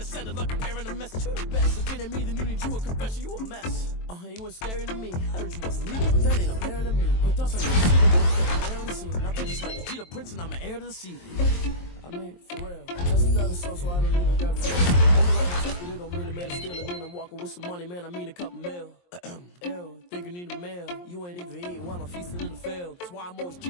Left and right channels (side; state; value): right; late; 23 ms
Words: send it like I'm airing a message to the best. If it ain't me, then you need you a confession, you a mess. You ain't scary to me. I heard you wasn't leaving, but that ain't apparent to me. But thoughts on you, I'm on the scene. I think it's like the Jeter Prince, and I'm an heir to the seat. I mean, for real. That's the other sauce, so I don't even grab it. But it don't mean the man is stealing. Mean I'm walking with some money, man. I mean a couple mil. Ew, think you need a meal. You ain't even eating while I'm feasting in the field. That's why I'm always